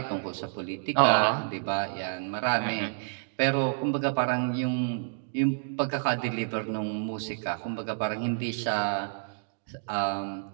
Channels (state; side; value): silent; left; digital silence